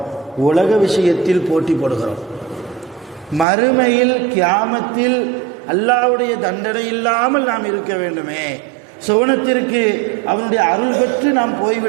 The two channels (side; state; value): left; drops out; at 3.5 s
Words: உலக விஷயத்தில் போட்டி போடுகிறோம். மறுமையில் கியாமத்தில் அல்லாஹ்வுடைய தண்டனை இல்லாமல் நாம் இருக்க வேண்டுமே, சுவனத்திற்கு அவனுடைய அருள் பெற்று நாம்